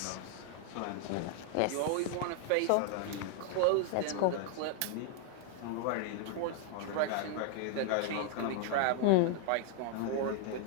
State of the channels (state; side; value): different; both; correlation 0.00